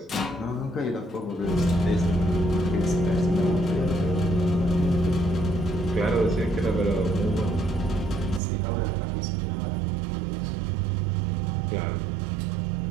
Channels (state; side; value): drops out; left; at 8.4 s